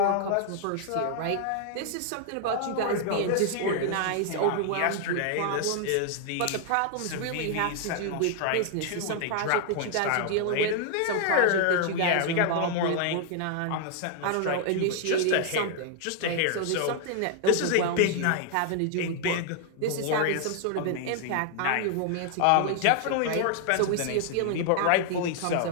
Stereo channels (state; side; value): different; both; correlation 0.00